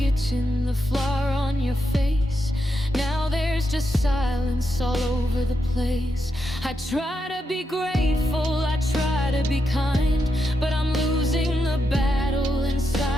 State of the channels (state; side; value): normal; both; correlation 0.84